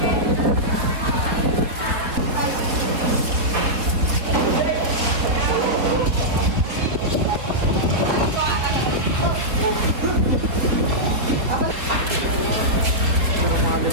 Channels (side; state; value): left; late; 4.3 ms